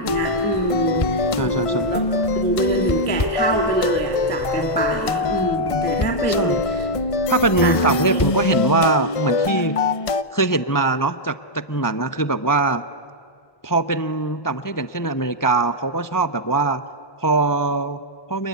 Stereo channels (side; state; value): right; late; 1.5 ms